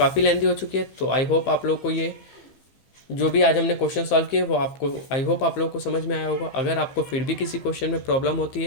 लेंथी हो चुकी है। तो आई होप आप लोग को ये जो भी आज हमने क्वेश्चन सॉल्व किए वो आपको आई होप आप लोगों को समझ में आया होगा। अगर आपको फिर भी किसी क्वेश्चन में प्रॉब्लम होती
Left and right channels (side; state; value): right; late; 15 ms